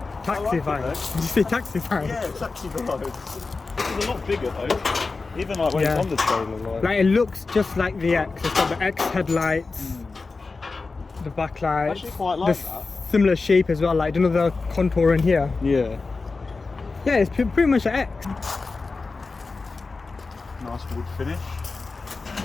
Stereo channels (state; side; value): quieter; right; 4.0 dB